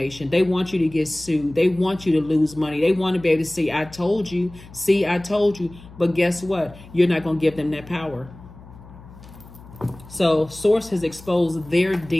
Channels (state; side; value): noise; left; hum, 20 dB below the sound